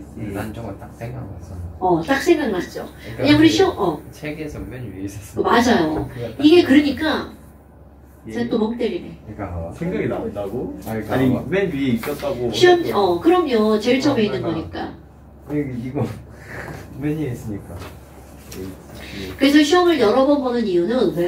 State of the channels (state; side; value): identical; both; correlation 1.00